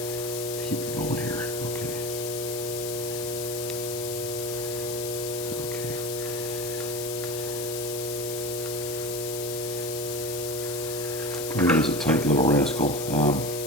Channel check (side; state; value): left; noise; hiss, 6 dB below the sound